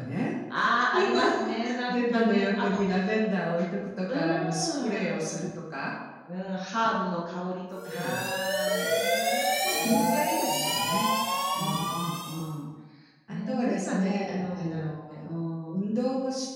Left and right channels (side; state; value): both; identical; correlation 1.00